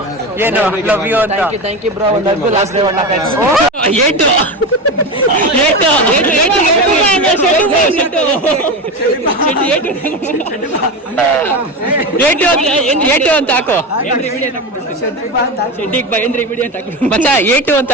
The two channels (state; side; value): normal; both; correlation 0.20